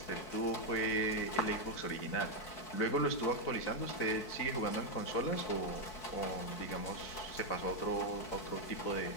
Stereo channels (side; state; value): right; late; 4.6 ms